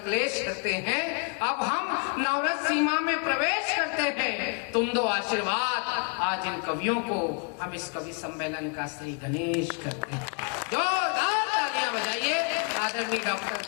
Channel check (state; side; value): quieter; right; 35.3 dB